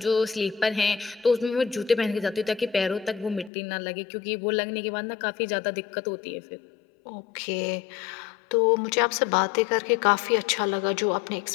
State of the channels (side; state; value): right; drops out; at 3.5 s